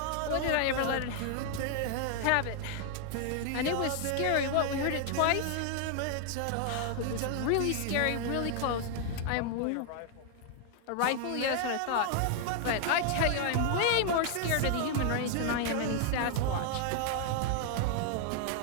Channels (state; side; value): different; both; correlation 0.00